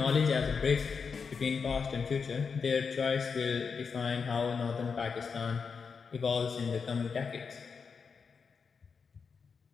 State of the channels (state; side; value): quieter; right; 5.6 dB